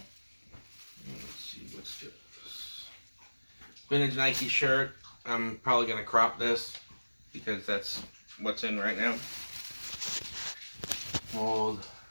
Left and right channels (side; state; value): both; inverted; correlation -1.00